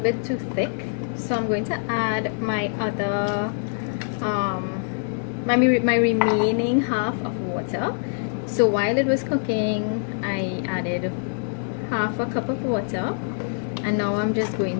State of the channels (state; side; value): silent; right; digital silence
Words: bit too thick, so I'm going to add my other my remaining half of water. So while it was cooking, I added half a cup of water, and now I'm just going